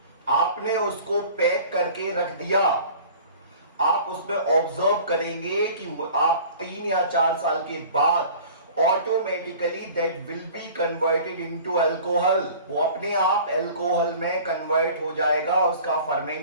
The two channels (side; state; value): both; inverted; correlation -0.45